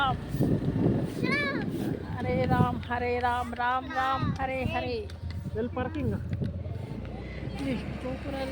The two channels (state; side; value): identical; both; correlation 1.00